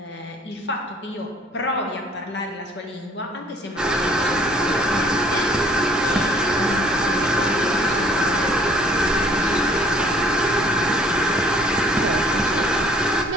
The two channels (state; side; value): normal; both; correlation 0.57